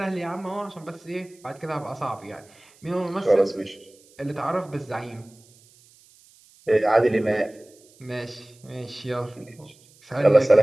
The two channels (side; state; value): right; noise; hiss, 28 dB below the sound